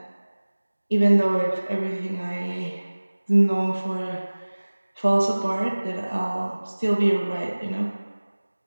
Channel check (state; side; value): inverted; both; correlation -1.00